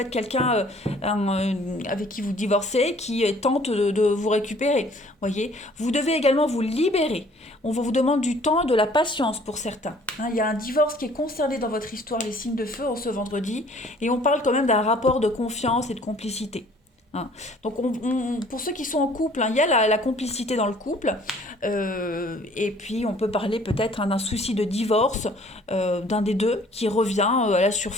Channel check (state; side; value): normal; both; correlation 0.56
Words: être quelqu'un avec qui vous divorcez, qui tente de vous récupérer. Voyez, vous devez également vous libérer. On vous demande du temps et de la patience pour certains. Hein, il y a un divorce qui est concerné dans votre histoire, les signes de feu, en ce vendredi, et on parle quand même d'un rapport de confiance et de complicité. Hein. Donc pour ceux qui sont en couple, hein, il y a la complicité dans le couple, et puis on peut parler peut-être hein, d'un souci de divorce d'un des deux qui revient à la